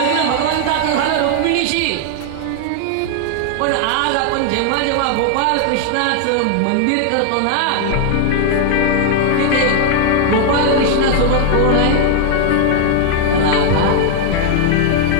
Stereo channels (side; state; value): both; different; correlation 0.00